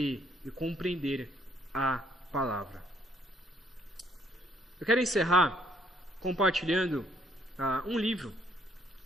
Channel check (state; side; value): normal; both; correlation 0.67